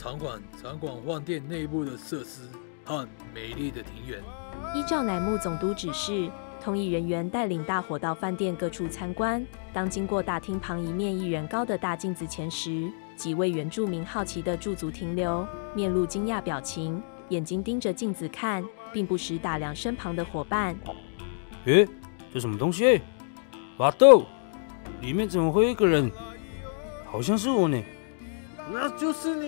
观饭店内部的设施和美丽的庭园。依照乃木总督指示，通译人员带领大伙到饭店各处参观。当经过大厅旁一面1人高的大镜子前时，几位原住民好奇地驻足停留，面露惊讶表情，眼睛盯着镜子看，并不时打量身旁的伙伴。这什么东西？巴豆，里面怎么会有一个人？好像是我呢。那就是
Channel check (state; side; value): silent; right; digital silence